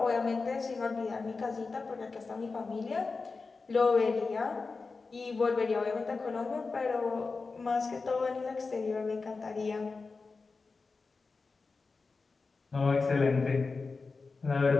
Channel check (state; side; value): quieter; right; 4.2 dB